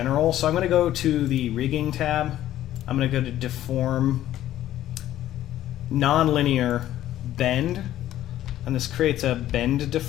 so I'm going to go to the rigging tab. I'm going to go to deform, nonlinear bend, and this creates a bend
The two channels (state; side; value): quieter; right; 13.1 dB